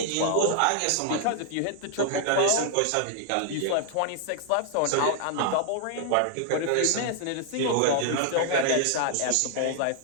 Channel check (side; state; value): both; different; correlation 0.00